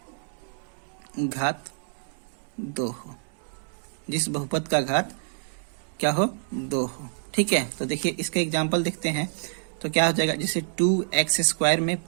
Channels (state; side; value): silent; left; digital silence